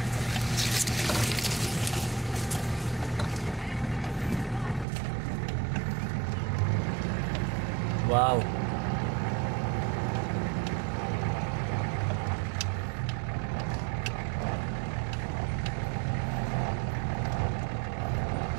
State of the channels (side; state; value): left; drops out; at 4.9 s